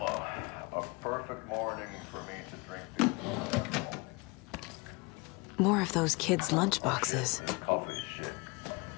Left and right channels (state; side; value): quieter; right; 27.1 dB